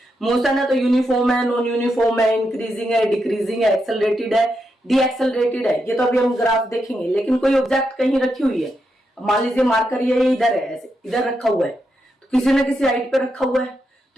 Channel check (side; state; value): both; normal; correlation 0.83